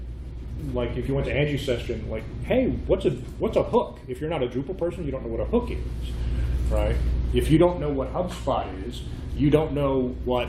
if you went to Angie's session, like, hey, what's a hook? If you're not a Drupal person, you don't know what a hook is, right? If you don't know what HubSpot is, you don't know what,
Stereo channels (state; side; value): identical; both; correlation 1.00